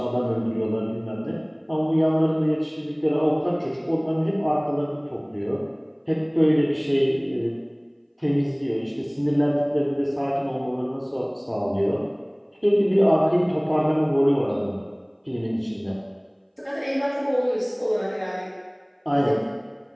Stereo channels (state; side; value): identical; both; correlation 1.00